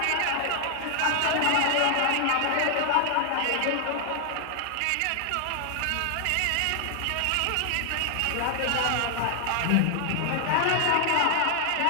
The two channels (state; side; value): different; both; correlation 0.00